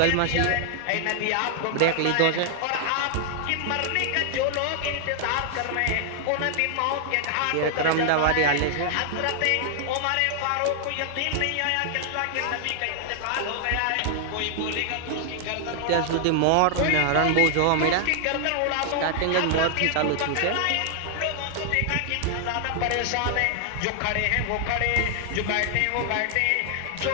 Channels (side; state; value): both; different; correlation 0.00